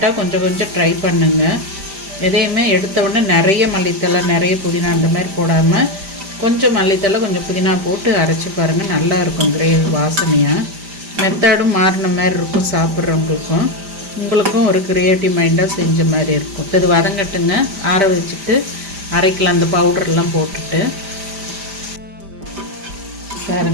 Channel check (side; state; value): left; late; 5.0 ms